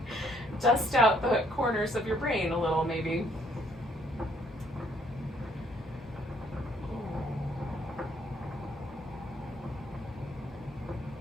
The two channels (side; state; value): both; normal; correlation 0.66